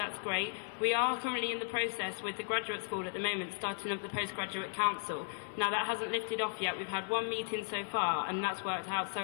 great. We are currently in the process with the graduate school at the moment, starting up the postgraduate council. Now that hasn't lifted off yet. We've had one meeting so far, and that's worked out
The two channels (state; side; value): silent; right; 54 dB below the other